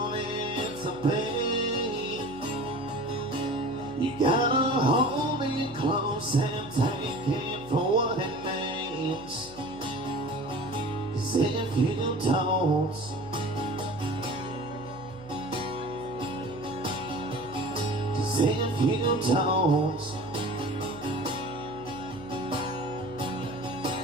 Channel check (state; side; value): noise; right; hum, 22 dB below the sound